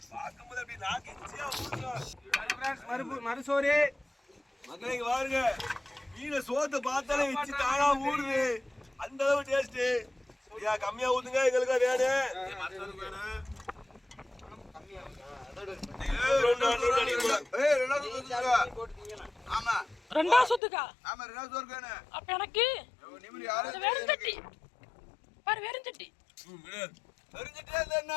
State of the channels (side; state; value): right; drops out; at 20.6 s